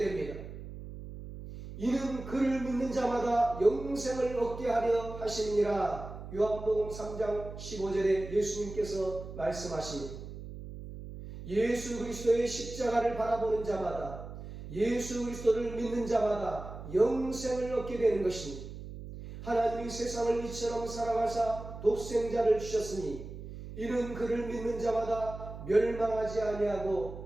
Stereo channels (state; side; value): noise; right; hum, 11 dB below the sound